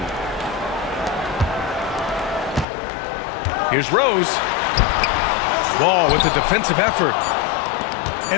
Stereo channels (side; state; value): right; drops out; at 2.7 s